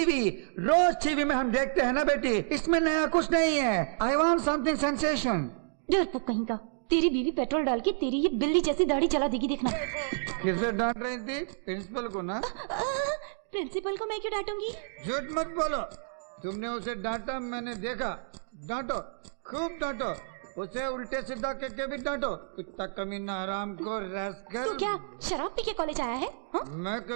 रोज टीवी में हम देखते हैं ना बेटी, इसमें नया कुछ नहीं है। I want something sensation. डरपोक कहीं का, तेरी बीवी पेट्रोल डाल के तेरी ये बिल्ली जैसी दाढ़ी जला देगी, देखना। किसे डांट रही थी? प्रिंसिपल को ना? प्रिंसिपल को मैं क्यों डांटूंगी? झूठ मत बोलो, तुमने उसे डांटा, मैंने देखा। डांटो, खूब डांटो, उसे उल्टे सीधा करके भी डांटो। कुत्ता कमीना, हराम को रैस्कल। तू क्या शराब पी के कॉलेज आया है? हाँ? मैं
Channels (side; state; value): left; silent; digital silence